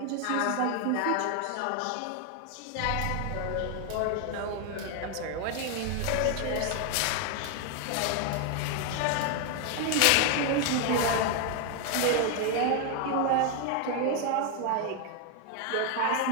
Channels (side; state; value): both; different; correlation 0.01